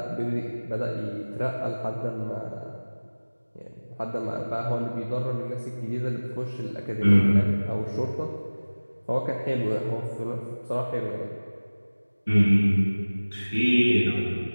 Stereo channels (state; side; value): inverted; both; correlation -1.00